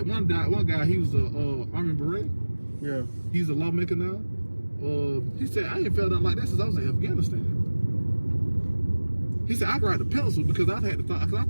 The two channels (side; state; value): both; inverted; correlation -1.00